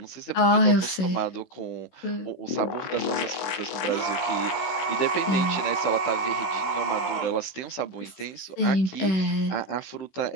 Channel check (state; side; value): late; right; 16 ms